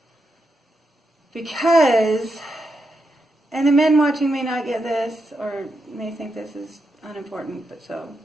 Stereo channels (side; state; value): both; normal; correlation 0.85